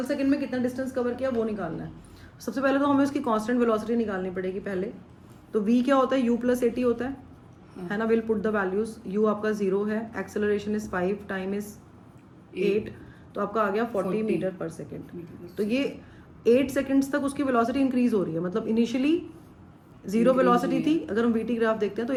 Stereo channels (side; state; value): both; identical; correlation 1.00